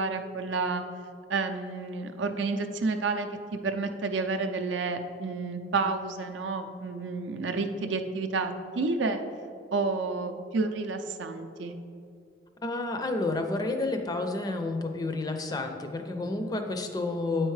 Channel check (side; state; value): both; normal; correlation 0.35